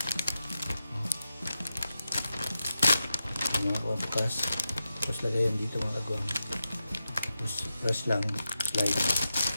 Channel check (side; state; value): both; inverted; correlation -0.88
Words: Bukas. Tapos lagayan dito mga kagwang. Tapos press lang, slide.